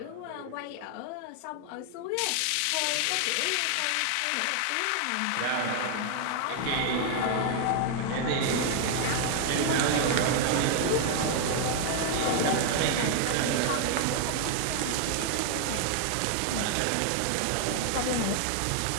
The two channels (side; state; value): both; different; correlation 0.00